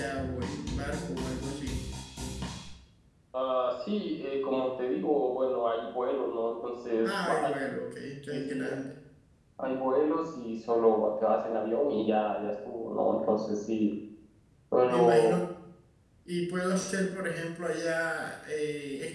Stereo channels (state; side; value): identical; both; correlation 1.00